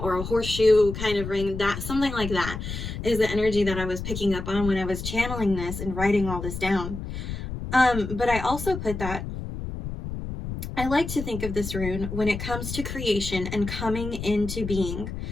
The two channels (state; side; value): noise; left; rumble, 7 dB below the sound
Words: a horseshoe kind of ring. That something like that is the energy that I was picking up on when I was channeling this and writing all this down. But I also put that I like to think of this rune when it comes to creation and coming into being,